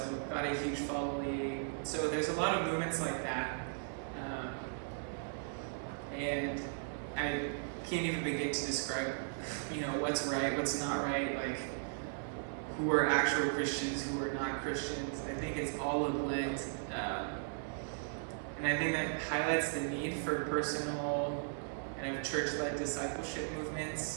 got a huge following. So there's a lot of movements like that. And I can't even begin to describe, you know, what's right, what's not right, like who are actual Christians, who are not Christians. I think it's all a blend. And I think that highlights the need for personal kind of church-led discipleship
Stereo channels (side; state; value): left; silent; digital silence